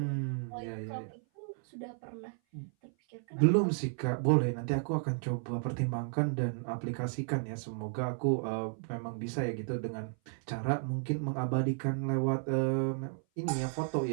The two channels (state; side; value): silent; left; 55 dB below the other